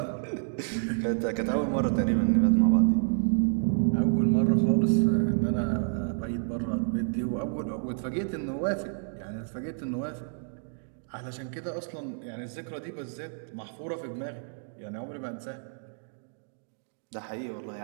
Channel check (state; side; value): silent; left; digital silence